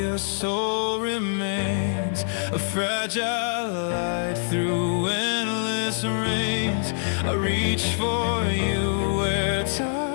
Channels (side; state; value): right; silent; 59 dB below the other